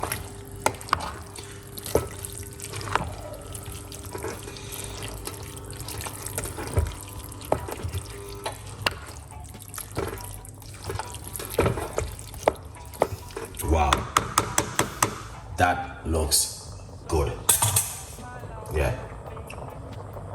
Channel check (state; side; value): identical; both; correlation 1.00